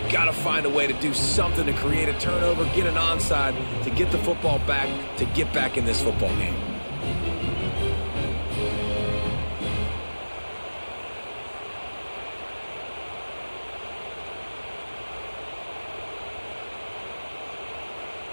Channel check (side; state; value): both; inverted; correlation -1.00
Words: You got to find a way to do something to create a turnover, get an onside, to get the football back, to get back in this football game.